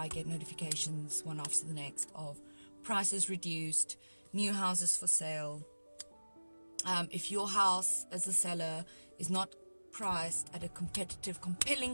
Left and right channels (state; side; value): inverted; both; correlation -1.00